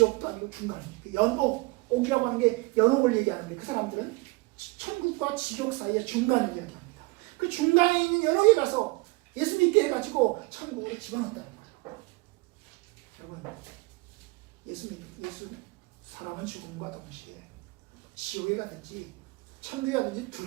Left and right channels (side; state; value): left; quieter; 25.3 dB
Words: 아니고 중간입니다. 연옥이라고 하는 게 연옥을 얘기하는 게 그 사람들은 천국과 지옥 사이의 중간을 이야기합니다. 그 중간에 있는 연옥에 가서 예수 믿게 해가지고 천국으로 집어넣었다는 거예요. 여러분 예수 사람은 죽음과 동시에 지옥에 가든지 천국에 가든지